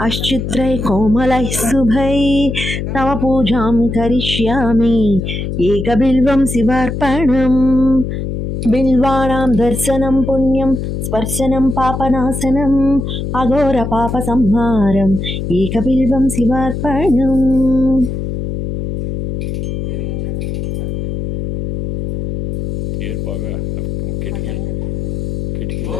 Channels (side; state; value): left; noise; hum, 4 dB below the sound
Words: అశ్చిత్రై కోమలైః శుభై తవ పూజాం కరిష్యామి ఏకబిల్వం శివార్పణం బిల్వానాం దర్శనం పుణ్యం స్పర్శనం పాపనాశనం అఘోర పాప సంహారం ఏకబిల్వం శివార్పణం.